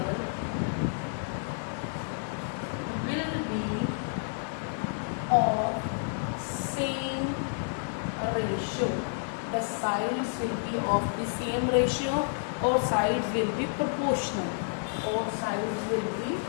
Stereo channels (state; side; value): silent; right; digital silence